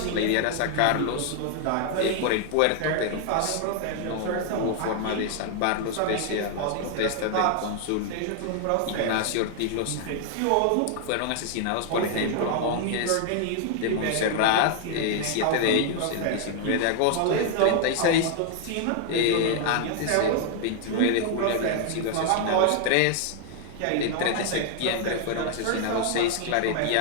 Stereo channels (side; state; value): both; different; correlation 0.00